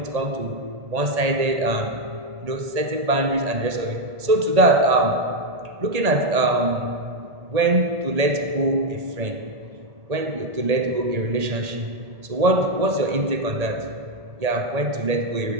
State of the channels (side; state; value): left; late; 1.8 ms